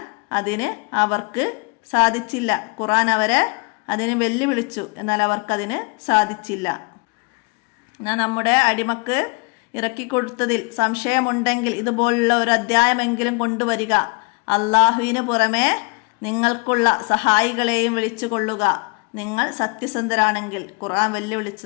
അതിന് അവർക്ക് സാധിച്ചില്ല. ഖുർആൻ അവരെ അതിന് വെല്ലുവിളിച്ചു. എന്നാൽ അവർക്കതിന് സാധിച്ചില്ല. എന്നാൽ നമ്മുടെ അടിമക്ക് ഇറക്കിക്കൊടുത്തതിൽ സംശയമുണ്ടെങ്കിൽ ഇതുപോലുള്ള ഒരു അധ്യായമെങ്കിലും കൊണ്ടുവരിക. അള്ളാഹുവിന് പുറമെ നിങ്ങൾക്കുള്ള സഹായികളെയും വിളിച്ചു കൊള്ളുക. നിങ്ങൾ സത്യസന്ധരാണെങ്കിൽ. ഖുർആൻ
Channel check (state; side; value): quieter; right; 30.2 dB